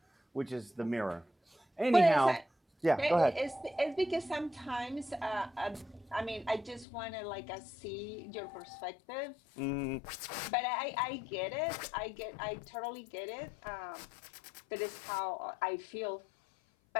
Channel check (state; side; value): drops out; right; at 6.9 s